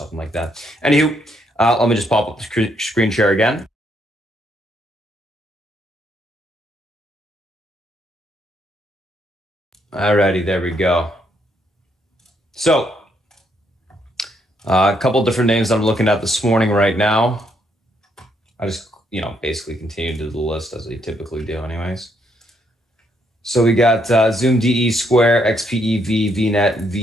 like that. Anywho, let me just pop up the screen share again. Alrighty, there we go. So a couple different names I'm looking at this morning right now. I just, basically continue to do the list as I typically do anyways. So we got Zoom DE Square, XPEV, VNet,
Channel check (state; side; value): normal; both; correlation 0.74